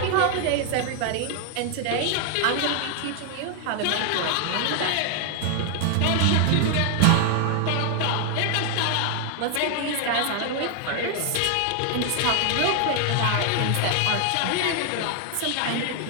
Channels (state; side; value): different; both; correlation 0.00